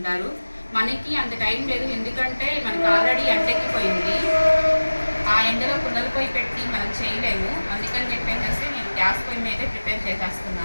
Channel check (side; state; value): both; inverted; correlation -1.00